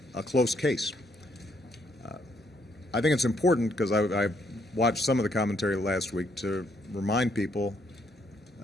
a close case. I think it's important, because I watched some of the commentary last week, to remind people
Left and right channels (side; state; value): both; normal; correlation 0.72